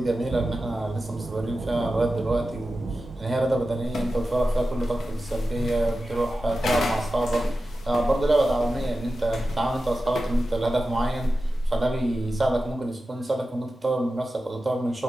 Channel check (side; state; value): both; normal; correlation 0.93